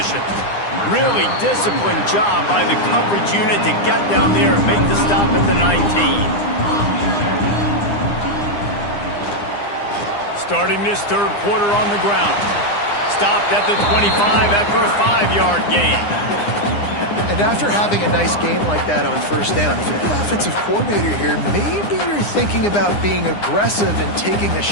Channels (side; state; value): right; late; 9.8 ms